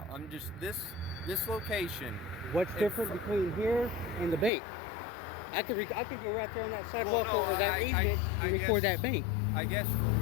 I'm just, this location... What's different between here and the bank? I could go right there on that sidewalk or that easement and record that bank. I guess for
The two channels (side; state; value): right; drops out; at 4.5 s